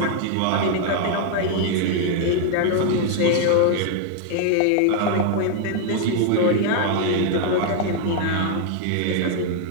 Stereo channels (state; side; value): different; both; correlation 0.00